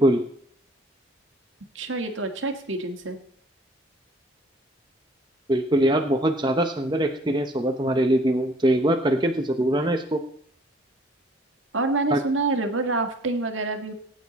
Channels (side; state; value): both; normal; correlation 0.56